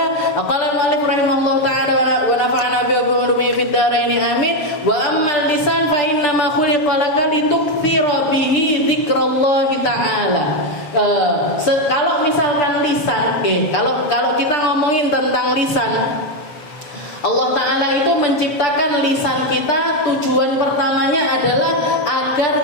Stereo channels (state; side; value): late; right; 7.2 ms